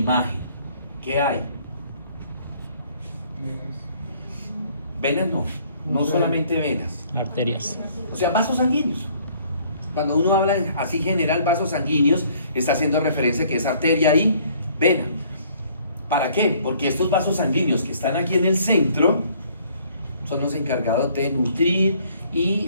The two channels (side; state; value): both; inverted; correlation -0.60